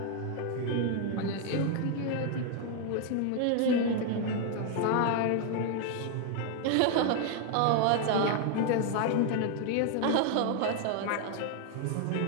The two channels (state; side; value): different; both; correlation 0.00